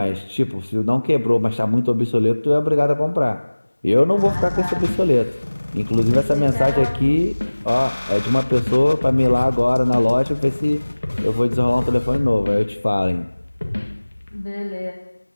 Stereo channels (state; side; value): inverted; both; correlation -1.00